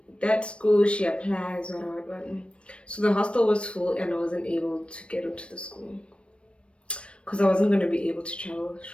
that school. She applies, what. So the hostel was full, and I wasn't able to get into the school because I wasn't going to be able to travel.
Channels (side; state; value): right; late; 0.059 ms